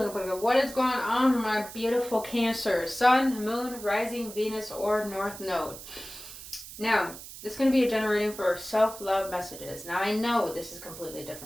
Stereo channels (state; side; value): noise; right; hiss, 14 dB below the sound